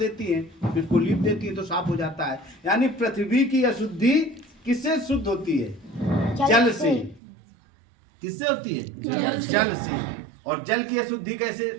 हैं, फिर उसको लीप देती है तो साफ हो जाता है। यानी पृथ्वी की अशुद्धि किससे शुद्ध होती है? जल से। किससे होती है? जल से। और जल की अशुद्धि कैसे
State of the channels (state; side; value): drops out; left; at 7.2 s